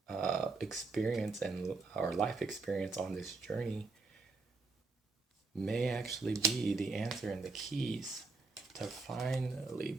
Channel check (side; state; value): left; quieter; 3.9 dB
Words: experience and our life experience on this journey may actually be the answer and the keys to finally